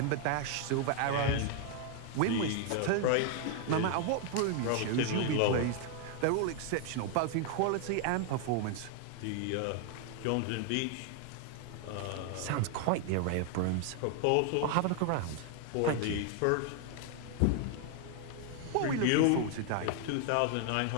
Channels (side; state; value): both; different; correlation 0.00